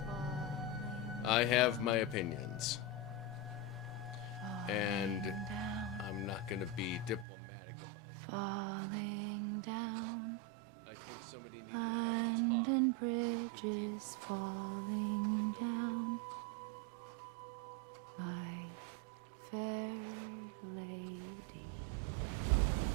I have my opinions. And I'm not going to be diplomatic about them. I think somebody needed to have a talk with Kojima, and nobody did.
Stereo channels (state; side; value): drops out; left; at 7.2 s